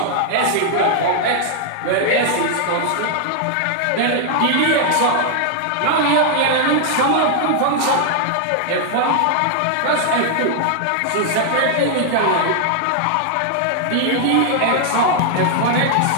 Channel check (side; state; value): both; different; correlation -0.01